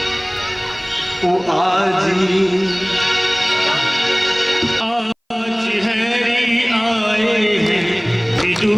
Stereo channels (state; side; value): identical; both; correlation 1.00